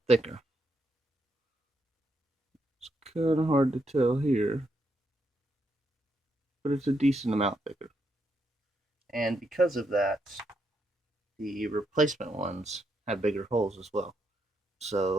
thicker. It's kind of hard to tell here, but it's a decent amount thicker. And because of that, the replacement ones have bigger holes as well.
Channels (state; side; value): normal; both; correlation 0.79